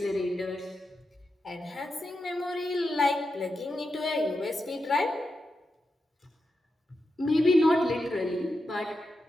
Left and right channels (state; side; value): normal; both; correlation 0.88